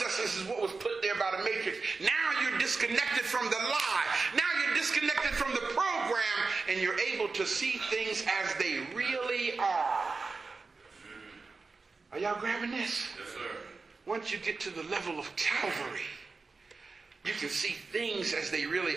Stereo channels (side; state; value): left; quieter; 4.2 dB